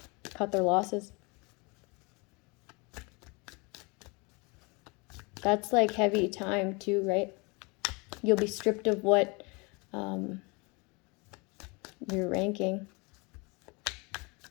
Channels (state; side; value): quieter; right; 28.8 dB